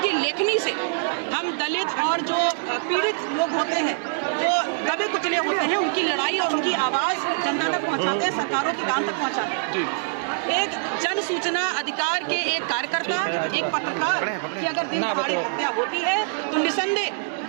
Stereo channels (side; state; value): left; silent; 62 dB below the other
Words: लेखनी से हम दलित और जो पीड़ित लोग होते हैं, वो दबे कुचले होते हैं, उनकी लड़ाई और उनकी आवाज जनता तक पहुंचाते हैं, सरकारों के कान तक पहुंचाते हैं। एक जन सूचना अधिकार के एक कार्यकर्ता, एक पत्रकार की अगर दिन दहाड़े हत्या होती है तो निसंदेह